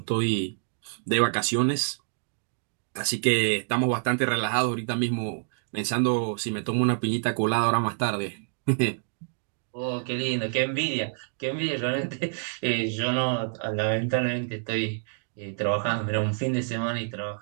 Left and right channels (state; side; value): silent; left; digital silence